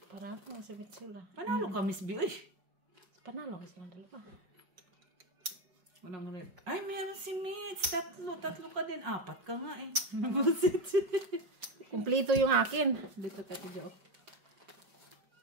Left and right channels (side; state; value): left; late; 5.5 ms